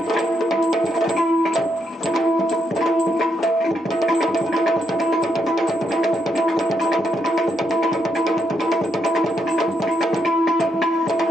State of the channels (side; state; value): both; normal; correlation 0.79